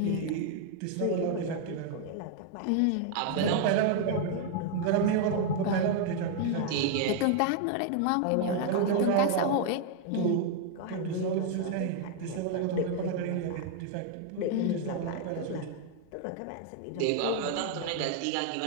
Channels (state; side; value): different; both; correlation 0.00